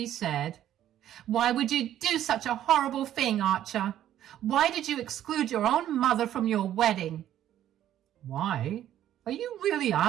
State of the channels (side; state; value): left; quieter; 11.7 dB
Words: said, "Why would you do such a horrible thing, Archer? Why did you exclude your own mother from your wedding?" Why? Are you really